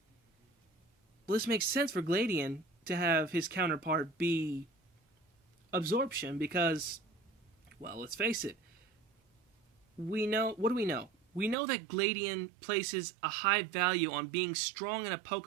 well, this makes sense for Gladian to have his counterpart be Absorption because, well, let's face it. What do we know? We know that Gladian places a high value on being strong in a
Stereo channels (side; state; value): left; drops out; at 11.6 s